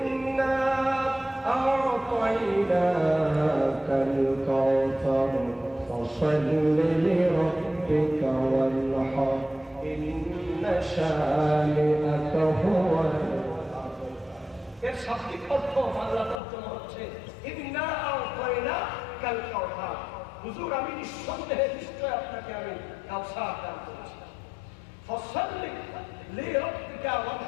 আ'তাইনাকাল কাউসার ফাসাল্লি লিরাব্বিকা ওয়ানহার ইন্না শানিআকা হুয়াল আবতার। এর শাব্দিক অর্থ বাংলা তর্জমা হচ্ছে ইন্না আ'তাইনাকাল কাউসার। হুজুর, আমি নিঃসন্দেহে নিশ্চয় আপনাকে আমি কাউসার দান করেছি। ফাসাল্লি লিরাব্বিকা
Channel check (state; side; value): drops out; right; at 16.4 s